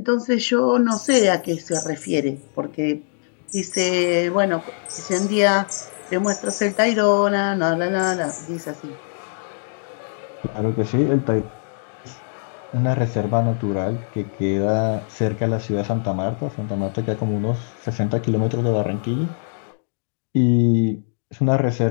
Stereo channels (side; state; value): right; silent; digital silence